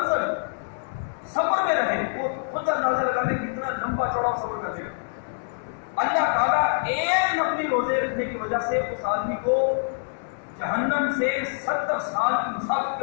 سفر میں رہے، وہ خود اندازہ لگا لے کتنا لمبا چوڑا سفر کر دے گا. اللہ تعالیٰ ایک نفلی روزے رکھنے کی وجہ سے اس آدمی کو جہنم سے 70 سال کی مسافت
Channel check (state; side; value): silent; right; digital silence